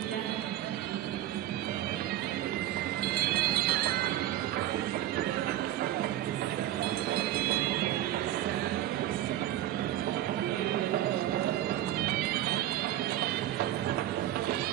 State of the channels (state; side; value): quieter; left; 13.3 dB